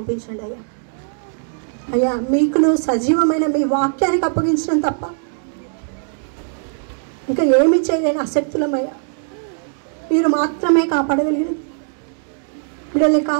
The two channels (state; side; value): silent; left; digital silence